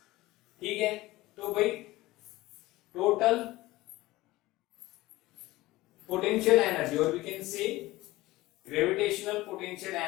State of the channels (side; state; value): right; quieter; 18.7 dB